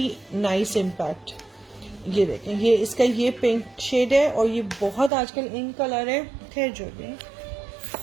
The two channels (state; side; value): drops out; left; at 5.1 s